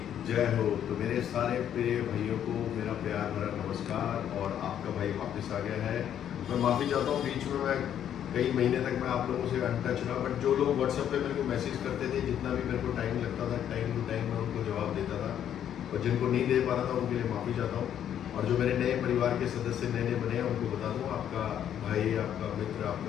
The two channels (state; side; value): quieter; right; 9.9 dB